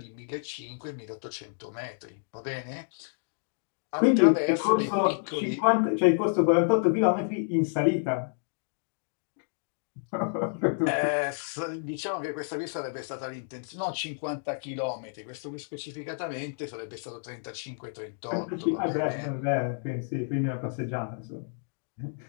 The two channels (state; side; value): silent; right; digital silence